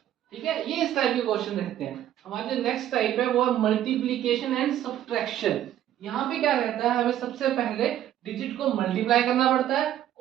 ठीक है। ये इस टाइप के क्वेश्चन रहते हैं। हमारे जो नेक्स्ट टाइप है वो है मल्टीप्लिकेशन एंड सब्ट्रैक्शन। यहाँ पे क्या रहता है, हमें सबसे पहले डिजिट को मल्टीप्लाई करना पड़ता है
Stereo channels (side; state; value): left; quieter; 11.8 dB